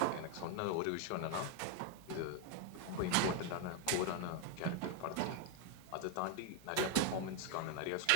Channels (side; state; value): both; different; correlation 0.01